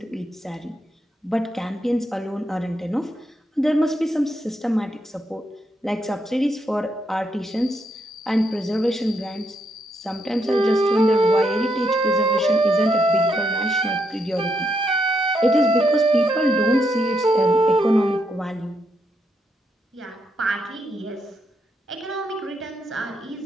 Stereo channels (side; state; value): both; normal; correlation 0.79